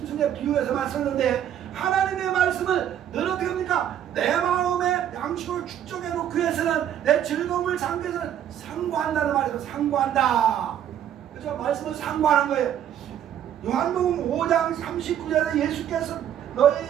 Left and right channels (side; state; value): left; quieter; 10.3 dB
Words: 비유해서 말씀했는데 하나님의 말씀을 늘 어떻게 합니까? 내 마음에 양식을 축적해 놓기 위해서는 내 즐거움을 삼기 위해서는 상고한다는 말이죠. 상고한다. 그죠? 말씀을 상고하는 거예요. 요한복음 5장 39절에 예수께서